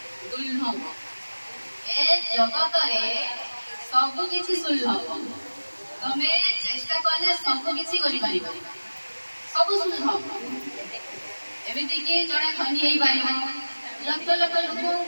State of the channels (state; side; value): inverted; both; correlation -1.00